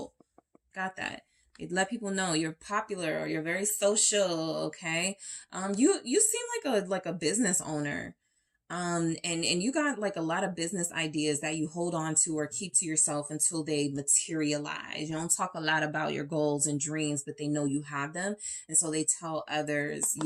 Got that. Let people know you're popular or you're very social, okay? You seem like a business owner. And you got like a lot of business ideas that you hold on to or keep to yourself until they materialize. You don't talk a lot about your goals and dreams, but they know you have them. And so they tell others,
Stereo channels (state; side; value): identical; both; correlation 1.00